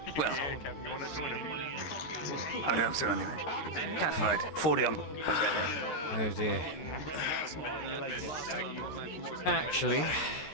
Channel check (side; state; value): right; late; 14 ms